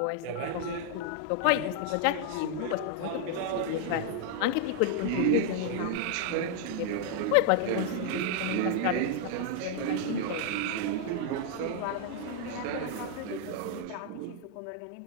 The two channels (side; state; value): both; different; correlation 0.00